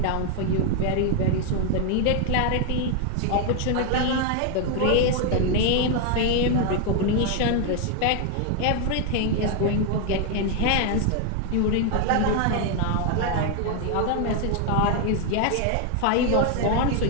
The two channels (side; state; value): both; different; correlation 0.01